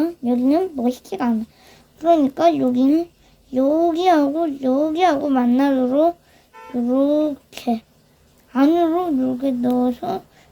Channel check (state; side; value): identical; both; correlation 1.00